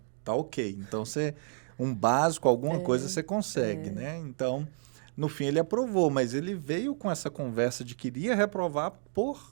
tá ok. Então, um básico, alguma coisa você consegue, né? Então, no fim ele aprovou, mas ele veio com essa conversa de que iria reprovar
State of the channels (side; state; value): left; silent; 57 dB below the other